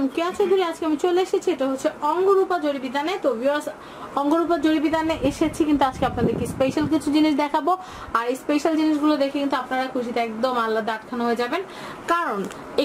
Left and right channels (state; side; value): identical; both; correlation 1.00